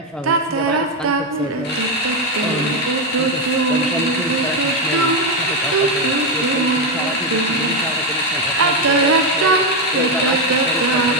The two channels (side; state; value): both; normal; correlation 0.07